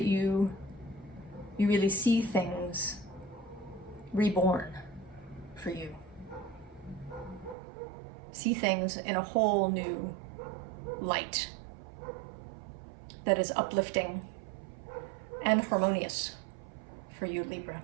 you really see things reborn for you. See things in a whole new light that is uplifting and harmonious for you, Libra.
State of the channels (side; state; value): left; drops out; at 7.6 s